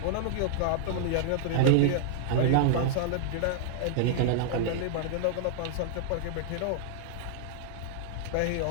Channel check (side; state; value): both; different; correlation -0.01